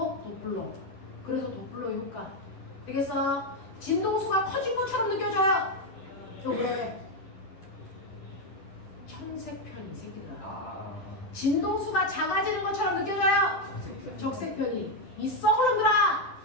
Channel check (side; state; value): right; late; 11 ms